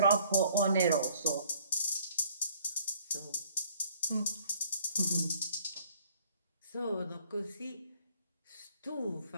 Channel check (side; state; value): both; inverted; correlation -0.59